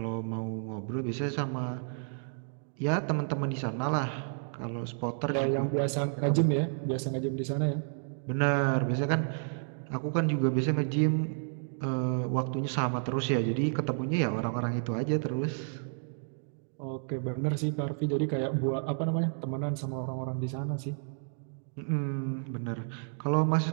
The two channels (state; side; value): silent; left; digital silence